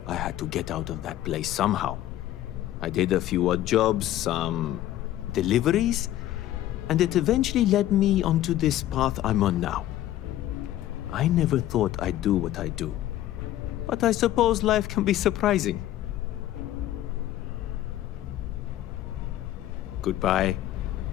I had to get out of that place somehow. I did a few odd jobs, some deliveries, and it eventually led me onto this path I'm on now. I never thought I'd do what I do, but I suppose life can be surprising. Goodbye.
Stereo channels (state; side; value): quieter; right; 13.5 dB